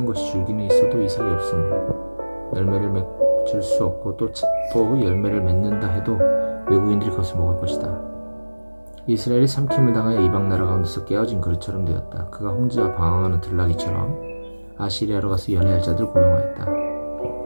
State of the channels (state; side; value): inverted; both; correlation -1.00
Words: 것이 줄기는 있어도 이삭이 없으므로 열매를 맺을 수 없고 또 열매를 맺는다 해도 외국인들이 그것을 먹을 것이다. 이스라엘이 삼킴을 당하여 이방 나라 가운데서 깨어진 그릇처럼 되었다. 그가 홍지와 방황하는 들나귀처럼 아시리아로 가서 연애할 자들을 고용하였다.